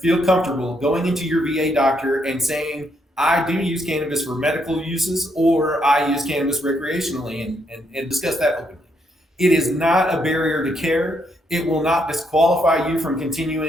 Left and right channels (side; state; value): both; normal; correlation 0.76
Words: feel comfortable going into your VA doctor and saying, "I do use cannabis for medical uses, or I use cannabis recreationally," and discuss that openly. It is not a barrier to care. It will not disqualify you from